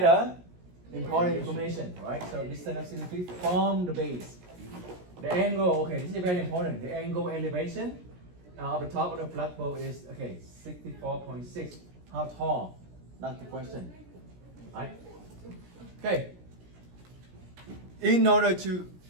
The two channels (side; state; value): left; late; 17 ms